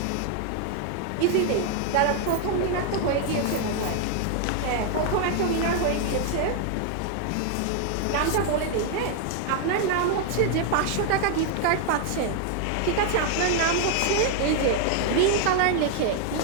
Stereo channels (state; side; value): different; both; correlation 0.00